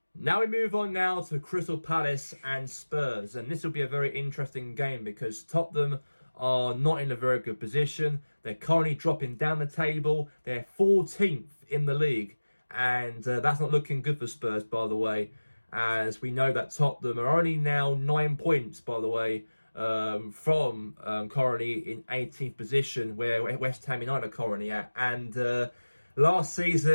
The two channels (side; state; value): both; inverted; correlation -1.00